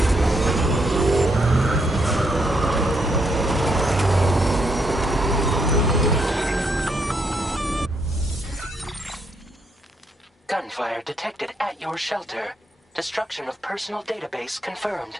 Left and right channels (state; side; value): normal; both; correlation 0.75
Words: Gunfire detected at your shelter. Destruction of personal database confirmed.